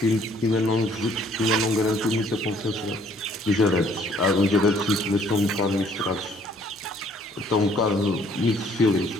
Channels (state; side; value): normal; both; correlation 0.61